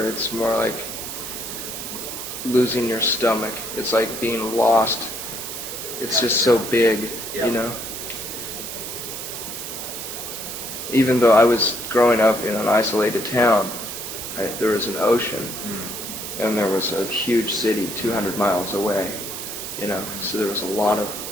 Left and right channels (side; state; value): right; noise; hiss, 7 dB below the sound